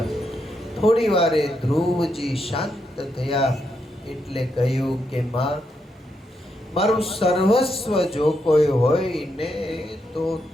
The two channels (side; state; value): both; normal; correlation 0.81